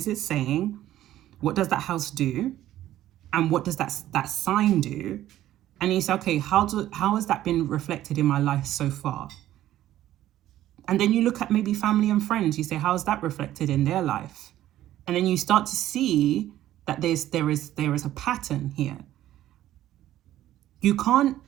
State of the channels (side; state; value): left; quieter; 13.4 dB